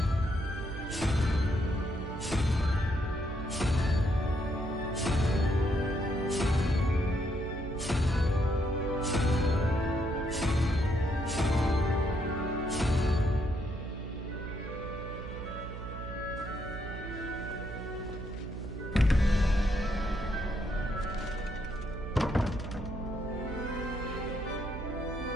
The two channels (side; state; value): right; noise; hum, 9 dB below the sound